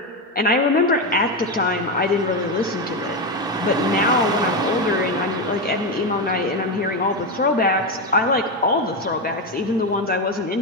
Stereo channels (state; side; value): normal; both; correlation 0.11